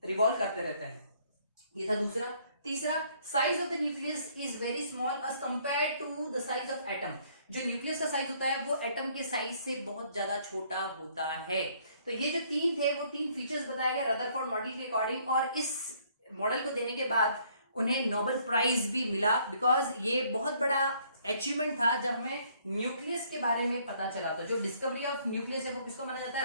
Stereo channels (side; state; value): both; inverted; correlation -0.64